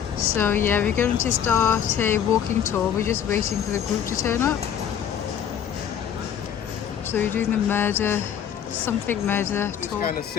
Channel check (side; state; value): right; quieter; 8.9 dB